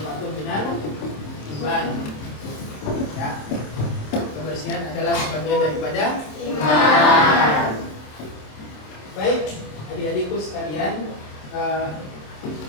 minal iman. Ya, kebersihan adalah sebagian daripada iman. Baik adik-adikku sekalian,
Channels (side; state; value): right; late; 27 ms